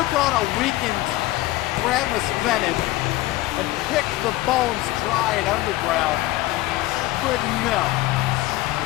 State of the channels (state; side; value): quieter; right; 17.7 dB